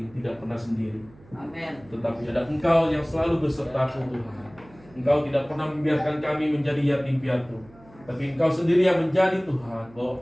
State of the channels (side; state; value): right; noise; hum, 25 dB below the sound